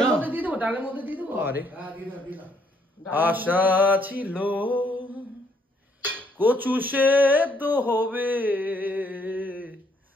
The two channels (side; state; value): both; normal; correlation 0.69